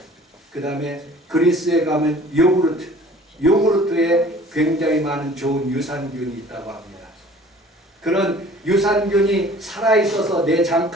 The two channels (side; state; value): both; normal; correlation 0.50